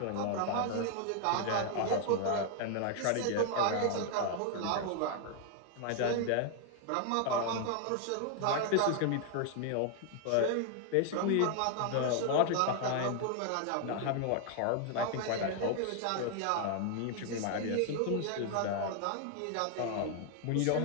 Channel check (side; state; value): both; different; correlation 0.00